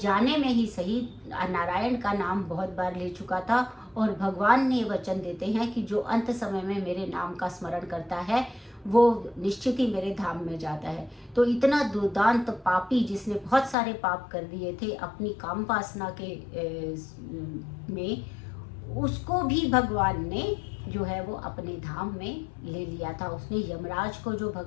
में ही सही नारायण का नाम बहुत बार ले चुका था। और भगवान ने वचन देते हैं कि जो अंत समय में मेरे नाम का स्मरण करता है वो निश्चित ही मेरे धाम में जाता है। तो इतना दुर्दांत पापी जिसने बहुत सारे पाप कर दिए थे अपनी काम वासना के में, उसको भी भगवान ने जो है वो अपने धाम में ले लिया था। उसने यमराज को, जो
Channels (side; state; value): right; drops out; at 13.8 s